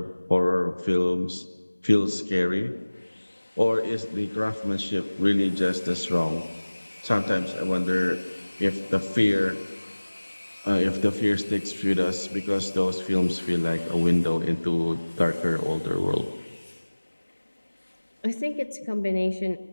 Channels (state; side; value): inverted; both; correlation -1.00